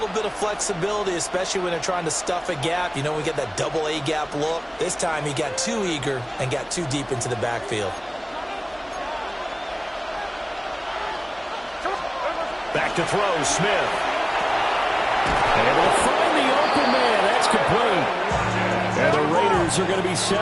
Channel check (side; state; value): both; identical; correlation 1.00